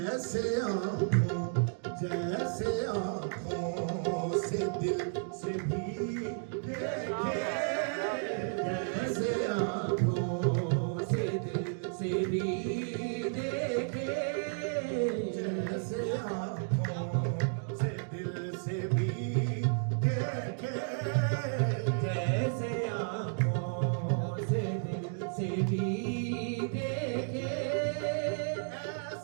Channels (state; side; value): silent; left; digital silence